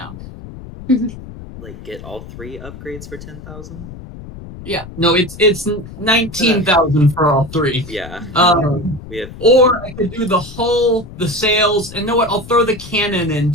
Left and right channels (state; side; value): noise; left; rumble, 14 dB below the sound